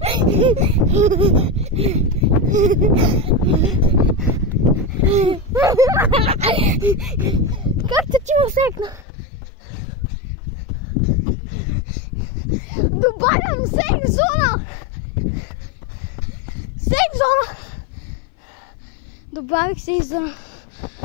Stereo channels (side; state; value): right; drops out; at 9.1 s